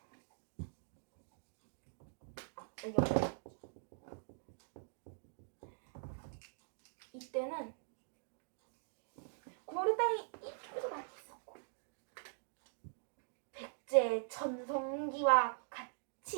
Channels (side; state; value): left; silent; digital silence